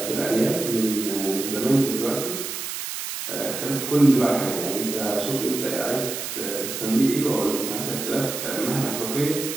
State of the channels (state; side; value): noise; right; hiss, 6 dB below the sound